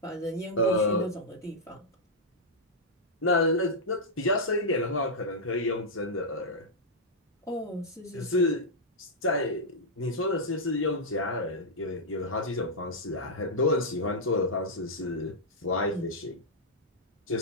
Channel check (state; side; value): normal; both; correlation -0.08